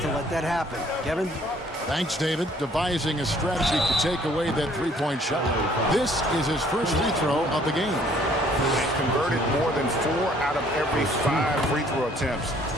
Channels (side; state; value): both; normal; correlation 0.60